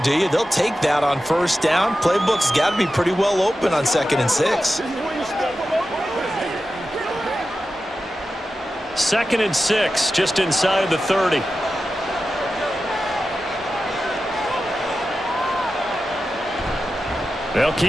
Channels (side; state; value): both; normal; correlation 0.92